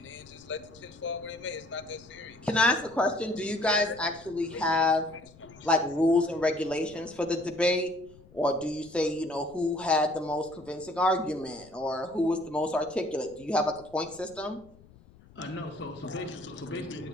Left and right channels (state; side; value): noise; left; rumble, 24 dB below the sound